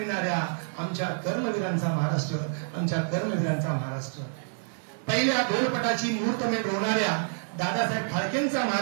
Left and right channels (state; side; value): silent; left; 59 dB below the other